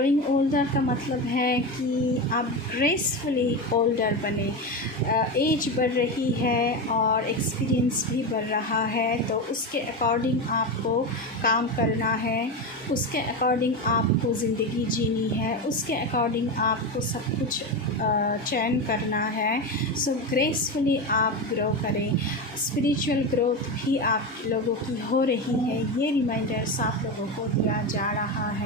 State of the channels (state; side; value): normal; both; correlation 0.17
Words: ओल्डर का मतलब है कि आप ग्रेसफुली ओल्डर बने। एज बढ़ रही है और एक्सपीरियंस भी बढ़ रहा है, तो उसके अकॉर्डिंग आपको काम करना है, उसके अकॉर्डिंग आपको ज़िंदगी जीनी है, उसके अकॉर्डिंग आपको सब कुछ चयन करना है। सो ग्रेसफुली आप ग्रो करें। स्पिरिचुअल ग्रोथ भी आप लोगों की हो रही है, ये रिमाइंडर्स आप लोगों को दिया जा रहा